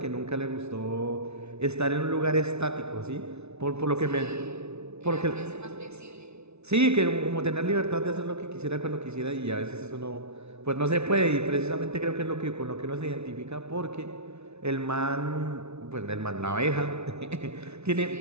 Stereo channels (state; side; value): late; left; 0.81 ms